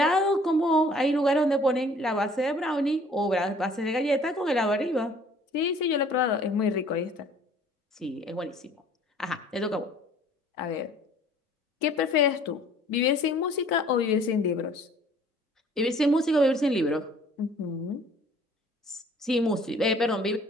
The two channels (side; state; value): both; normal; correlation 0.54